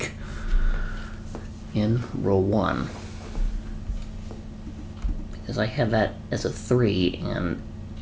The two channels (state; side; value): identical; both; correlation 1.00